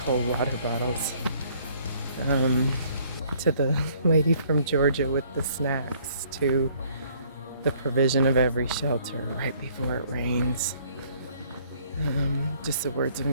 cold water bottles, to the lady from Georgia with the snacks, to the provision of every shelter right before it rains. Just the words of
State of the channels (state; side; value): inverted; both; correlation -0.61